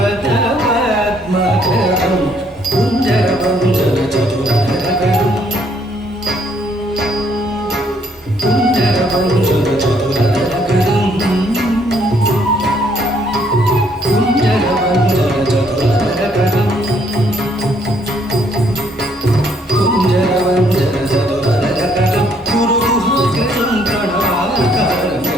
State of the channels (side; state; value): both; normal; correlation 0.68